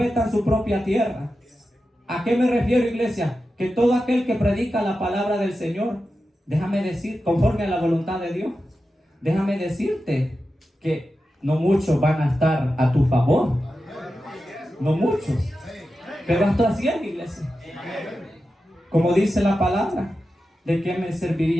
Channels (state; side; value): normal; both; correlation 0.91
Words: en su propia tierra. ¿A qué me refiero, iglesia? Que todo aquel que predica la palabra del Señor, déjame decir, conforme a la voluntad de Dios, déjame decirte que no muchos van a estar a tu favor. No muchos. Pero hasta así es, iglesia. Como dice la palabra, ¿de qué me